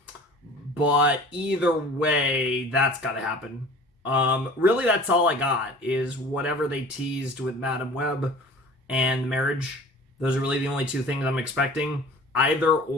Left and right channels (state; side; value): normal; both; correlation 0.44